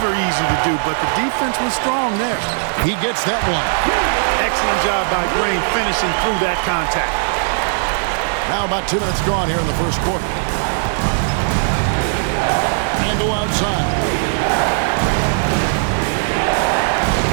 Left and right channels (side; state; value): left; silent; digital silence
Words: easy to do, but the defense was strong there. He gets that one. Excellent job by Green finishing through that contact. Now about 2 minutes gone here in the first quarter. Randle outside.